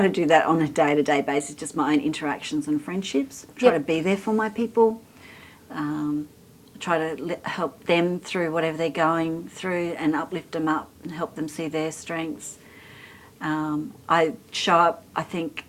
to do that on a day-to-day basis. Just my own interactions and friendships. Try to be there for my people. Try to help them through whatever they're going through and uplift them up and help them see their strengths. I show up, I think,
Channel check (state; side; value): identical; both; correlation 1.00